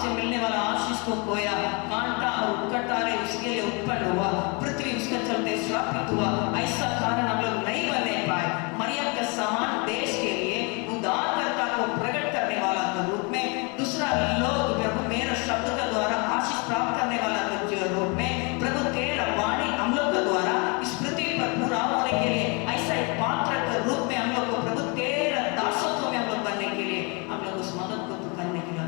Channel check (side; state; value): right; quieter; 31.8 dB